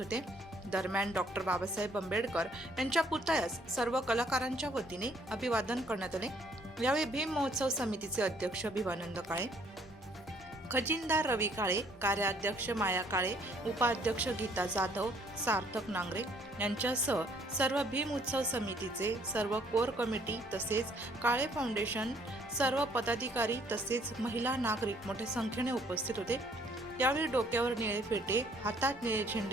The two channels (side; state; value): both; normal; correlation 0.63